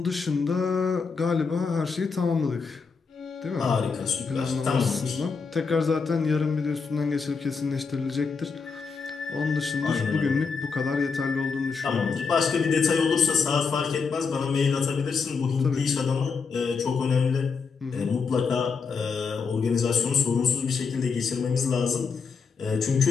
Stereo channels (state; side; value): quieter; right; 5.2 dB